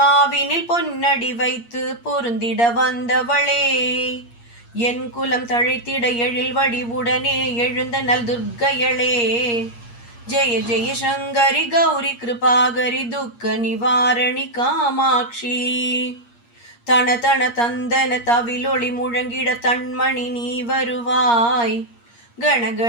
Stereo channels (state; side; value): late; right; 8.5 ms